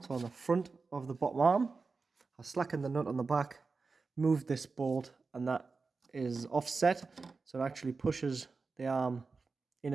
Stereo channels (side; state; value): left; quieter; 4.3 dB